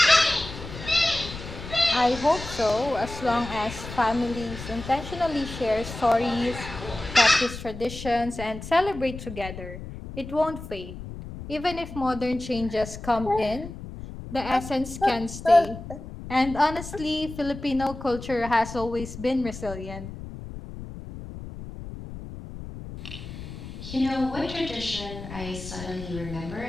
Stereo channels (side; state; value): left; noise; rumble, 11 dB below the sound